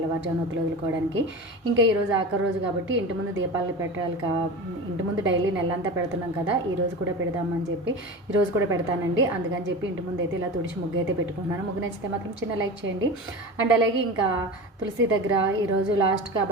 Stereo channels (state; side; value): normal; both; correlation 0.30